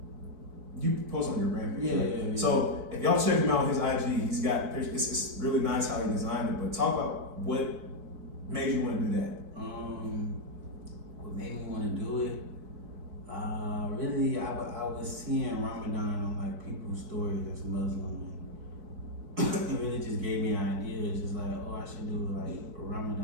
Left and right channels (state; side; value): late; left; 4.6 ms